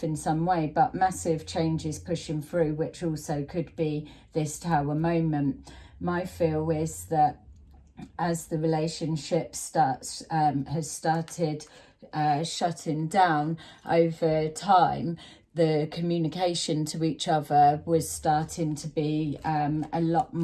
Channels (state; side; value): identical; both; correlation 1.00